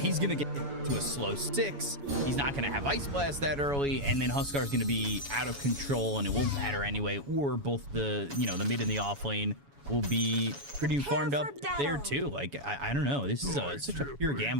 gonna get to a slow 6. He's not gonna have Ice Blast that early, and then Huskar's gonna be out of control, and it won't matter anyway. Or both the the mid and the off lane will be pretty farmed up there too. Like, I don't know. This is such a pure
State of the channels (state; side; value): late; left; 7.1 ms